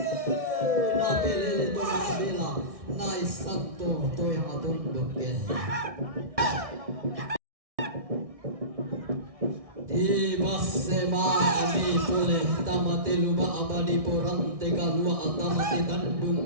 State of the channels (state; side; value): late; left; 1.6 ms